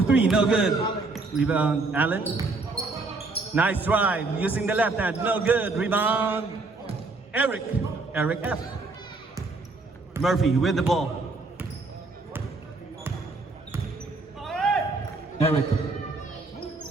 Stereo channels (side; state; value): left; quieter; 3.6 dB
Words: three, no good. Rebound, Allen. Nice drive, using the left hand, no good. Rebound, Eric F. Murphy with the ball. Eric.